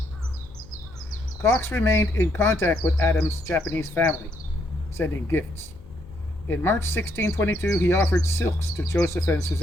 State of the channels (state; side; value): noise; left; hum, 22 dB below the sound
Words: Cox remained in contact with Adams' Japanese family, sending gifts. In March 1622, he offered silks to Joseph and